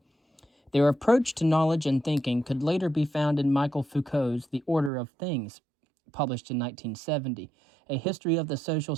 Their approach to knowledge and thinking could later be found in Michel Foucault's The Order of Things, published in 1970, a history of the social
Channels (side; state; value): left; drops out; at 4.9 s